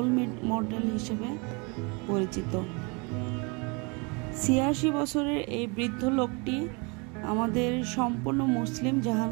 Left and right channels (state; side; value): quieter; left; 30.7 dB